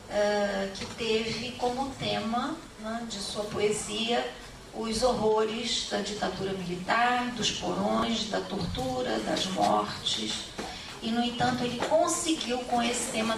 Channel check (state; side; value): identical; both; correlation 1.00